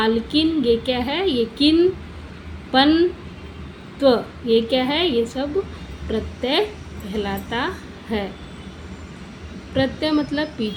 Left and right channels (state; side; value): identical; both; correlation 1.00